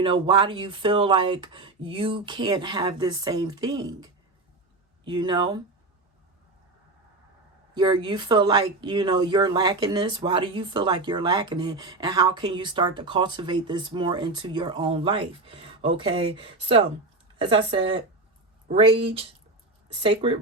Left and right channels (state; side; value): quieter; left; 3.1 dB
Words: do you feel like you can't have this same thing? You feel like, you're lacking this. Why do you feel like you're lacking it? And how can you start to cultivate this more into your own life? Okay. So, as I said, sacred